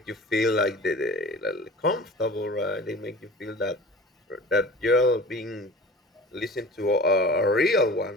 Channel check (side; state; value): both; normal; correlation 0.40